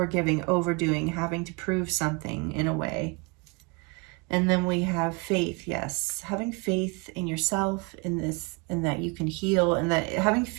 overdoing, having to prove something in a way. And then we have faith. Yes, having faith in yourself, in this, and that you can heal, and that having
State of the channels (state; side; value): quieter; left; 29.0 dB